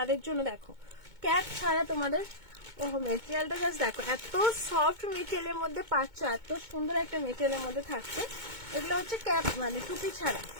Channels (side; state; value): left; late; 2.2 ms